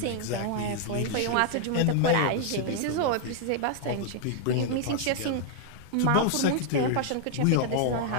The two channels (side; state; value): both; different; correlation 0.00